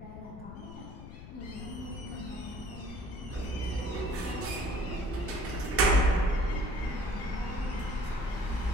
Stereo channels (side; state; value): left; noise; rumble, 12 dB below the sound